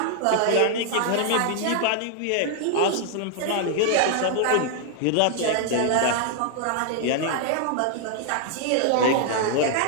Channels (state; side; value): different; both; correlation 0.00